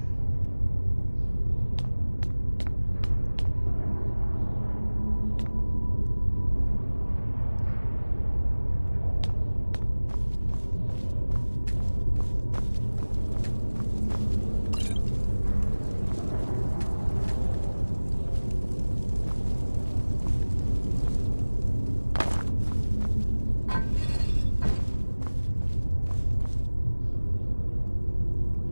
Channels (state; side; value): inverted; both; correlation -1.00